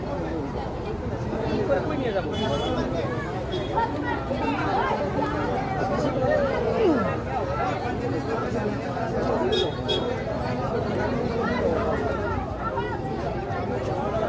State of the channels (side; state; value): both; identical; correlation 1.00